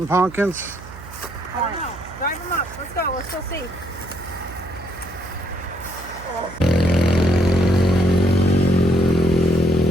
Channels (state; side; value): noise; right; hum, 16 dB below the sound